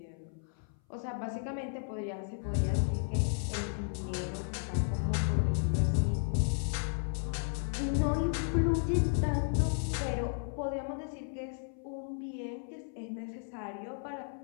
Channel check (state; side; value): silent; right; 55 dB below the other